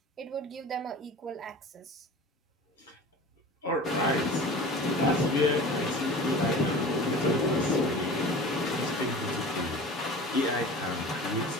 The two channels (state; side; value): normal; both; correlation 0.38